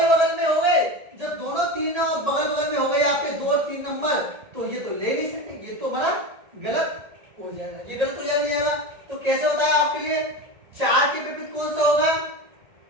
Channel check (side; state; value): left; late; 1.8 ms